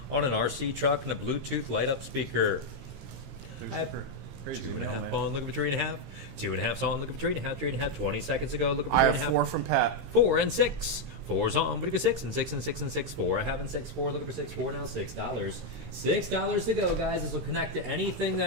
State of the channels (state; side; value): late; left; 15 ms